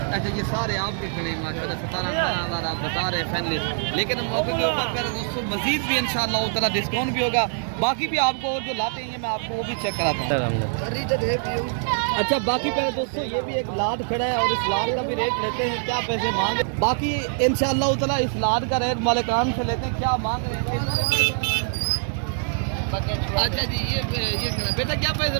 अच्छा ये सारे आपके खड़े हैं माशाल्लाह 17,000 आप बता रहे हैं फैमिली। लेकिन मौके के ऊपर मेरे दोस्तों मजीद भी इंशाल्लाह ताला डिस्काउंट भी होगा। बाकी भी आपको और जो लाते हैं मैं आपको वो भी चेक कराता हूँ। अच्छा बाकी मेरे दोस्तों ये भी एक लाट खड़ा है और इस लाट का भी रेट लेते हैं, क्या पैसे मांगे। बाकी इंशाल्लाह ताला इस लाट का रेट मालिकान से लेते हैं, क्या मांग रहे हैं। अच्छा जी ये बेटा क्या पैसे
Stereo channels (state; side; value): silent; left; digital silence